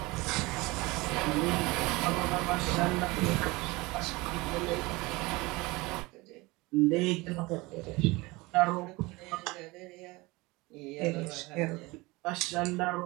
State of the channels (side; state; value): left; quieter; 22.8 dB